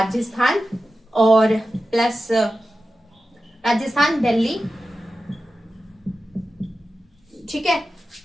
और प्लस राजस्थान, दिल्ली, ठीक है,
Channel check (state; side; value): normal; both; correlation 0.93